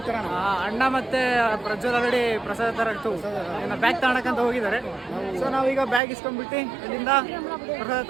ತರೋಣ. ಅಣ್ಣ ಮತ್ತು ಪ್ರಜ್ವಲ್ ಆಲ್ರೆಡಿ ಪ್ರಸಾದ ತರಕ್ಕೆ ಏನೋ ಬ್ಯಾಗ್ ತಗೊಳಕ್ಕಂತ ಹೋಗಿದ್ದಾರೆ. ಸೊ ನಾವೀಗ ಬ್ಯಾಗ್ ಇಸ್ಕೊಂಡ್ಬಿಟ್ಟು ಇಲ್ಲಿಂದ ಪ್ರಸಾದ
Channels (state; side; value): drops out; left; at 6.0 s